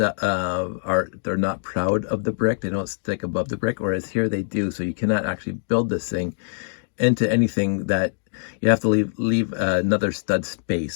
they're not proud of the brick. They don't stick above the brick, whereas here they do. So you cannot actually build this thing into anything that you have to leave another stud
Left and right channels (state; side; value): silent; right; digital silence